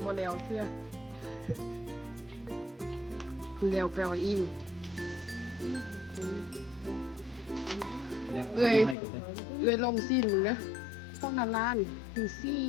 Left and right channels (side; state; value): right; drops out; at 9.0 s